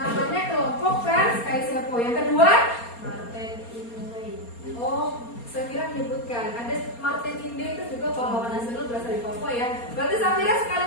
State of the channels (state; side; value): late; right; 4.3 ms